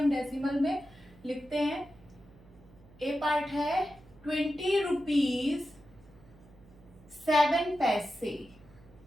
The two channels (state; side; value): noise; right; hum, 25 dB below the sound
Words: डेसिमल में लिखते हैं। ए पार्ट है 20 रुपीज 7 पैसे।